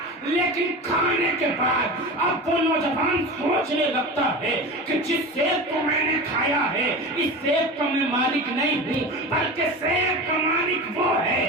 لیکن کھانے کے بعد اب وہ نوجوان سوچنے لگتا ہے کہ جس سیب کو میں نے کھایا ہے اس سیب کا میں مالک نہیں ہوں، بلکہ سیب کا مالک وہ ہے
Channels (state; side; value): normal; both; correlation 0.29